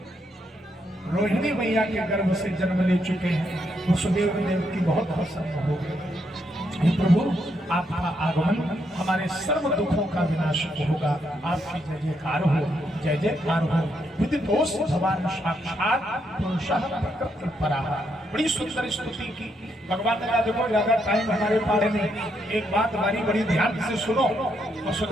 रोहिणी मैया के गर्भ से जन्म ले चुके हैं। वसुदेव देव की बहुत प्रसन्न हो गए। प्रभु आपका आगमन हमारे सर्व दुखों का विनाश होगा, आपकी जय जयकार हो, जय जयकार हो। विदितोष भगवान साक्षात पुरुषः प्रकृति पराः। बड़ी सुंदर स्तुति की भगवान ने कहा देखो ज्यादा टाइम हमारे पास नहीं, एक बात हमारी बड़ी ध्यान से सुनो।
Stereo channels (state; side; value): normal; both; correlation 0.78